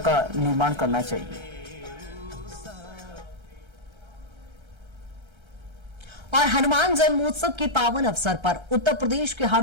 निर्माण करना चाहिए। और हनुमान जन्मोत्सव के पावन अवसर पर उत्तर प्रदेश के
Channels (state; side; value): late; left; 1.3 ms